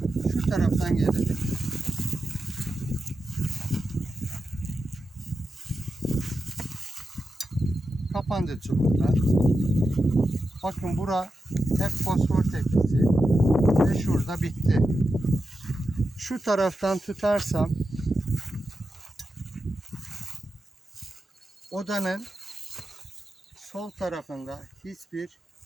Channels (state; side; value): normal; both; correlation 0.90